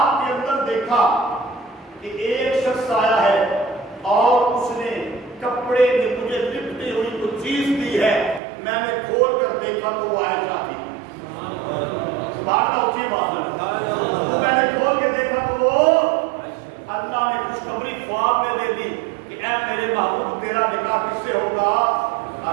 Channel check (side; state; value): left; drops out; at 8.4 s